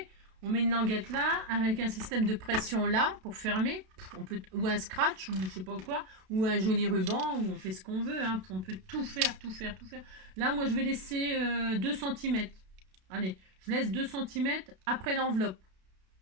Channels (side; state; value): left; late; 32 ms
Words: On met une languette là, avec un système de pression là, pour fermer. On peut, ou un scratch, ou je sais pas quoi, ou un joli ruban, ou on fait ce qu'on veut. Hein. On peut tout faire, tout faire, tout faire. Là, moi, je vais laisser 2 cm. Allez, je laisse 2 cm après l'enveloppe.